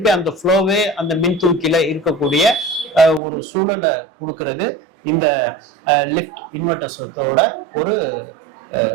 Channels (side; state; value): left; drops out; at 3.2 s